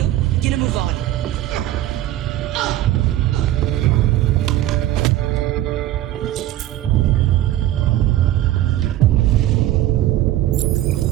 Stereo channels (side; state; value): left; quieter; 14.0 dB